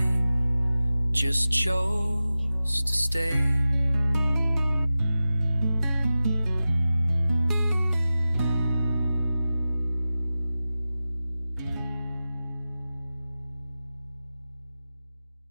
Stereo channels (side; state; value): both; inverted; correlation -0.95